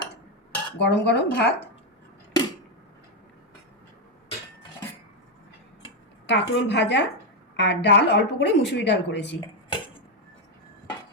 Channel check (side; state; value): both; normal; correlation 0.04